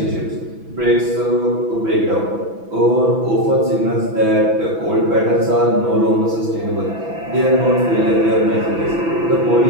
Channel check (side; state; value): left; late; 6.0 ms